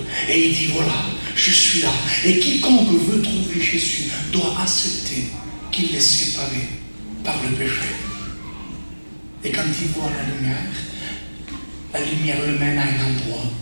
et il dit voilà, je suis là. Et quiconque veut trouver Jésus doit accepter qu'il est séparé par le péché. Et quand il voit la lumière le mène à un endroit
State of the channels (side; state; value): both; inverted; correlation -1.00